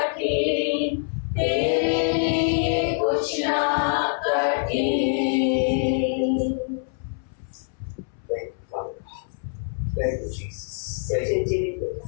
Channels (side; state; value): right; silent; 62 dB below the other